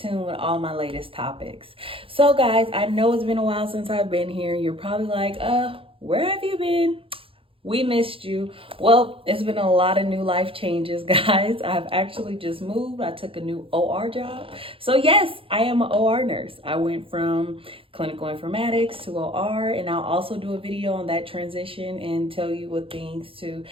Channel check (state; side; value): late; left; 0.26 ms